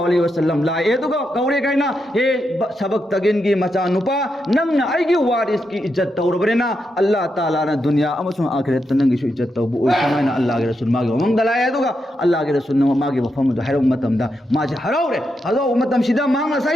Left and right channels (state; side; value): normal; both; correlation 0.84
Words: अलैहि वसल्लम ला ए दुगा कौरे काइना हे सबक तगिन की मचा नुपा नंग अइगी वारिस की इज्जत तौरबरेना अल्लाह ताला न दुनिया अमसुं आखिरत नंगी सु इज्जत तौबु ओइ समाना अल्लाह के रसूल मागे ममंग दलाय दुगा अल्लाह के रसूल न मागे वफम दु हैरो मतमदा माजे हराउरे हलो मतम सिदा मांगा